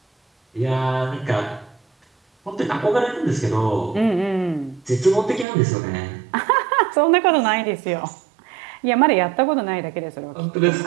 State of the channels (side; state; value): left; drops out; at 5.5 s